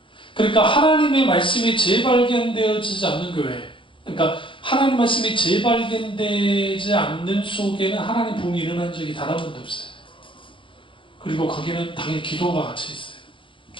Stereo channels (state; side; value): late; right; 0.25 ms